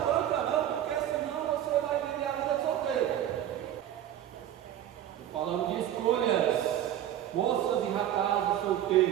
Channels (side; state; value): left; quieter; 11.4 dB